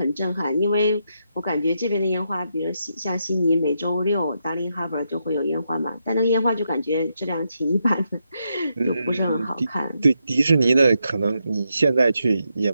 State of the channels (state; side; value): inverted; both; correlation -0.82